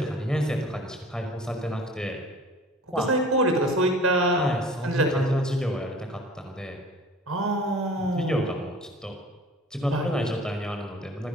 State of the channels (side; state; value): both; normal; correlation 0.45